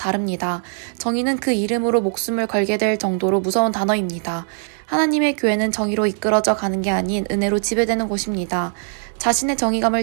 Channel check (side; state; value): left; silent; 55 dB below the other